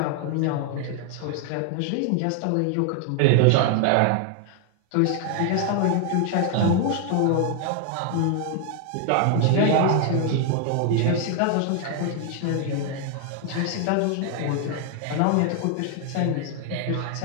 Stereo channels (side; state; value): both; different; correlation 0.00